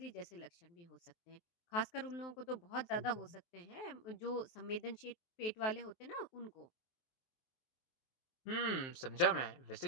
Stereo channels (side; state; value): right; late; 23 ms